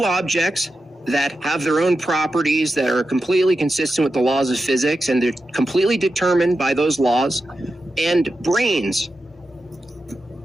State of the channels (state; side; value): normal; both; correlation 0.90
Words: objects that have their own properties that are completely consistent with the laws of physics and they're completely determined by those laws, and brains?